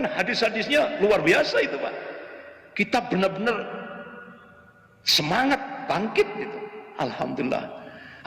hadis-hadisnya luar biasa itu Pak. Kita benar-benar semangat bangkit gitu. Alhamdulillah.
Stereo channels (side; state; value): both; identical; correlation 1.00